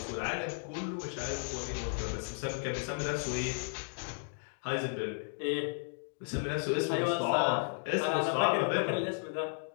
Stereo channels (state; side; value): silent; right; 55 dB below the other